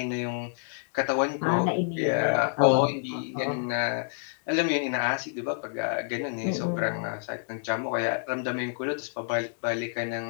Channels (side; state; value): right; silent; digital silence